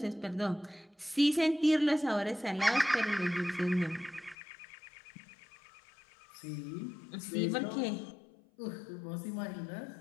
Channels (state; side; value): drops out; right; at 4.4 s